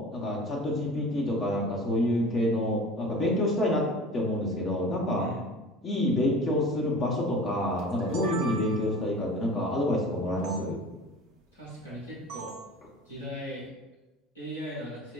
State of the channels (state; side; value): normal; both; correlation 0.40